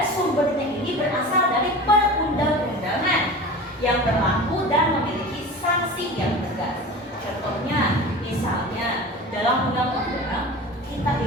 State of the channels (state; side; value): normal; both; correlation 0.34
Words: sumbernya ini berasal dari perundang-undangan yang berlaku dan memiliki sanksi yang tegas. Contohnya, misalnya dalam undang-undang kita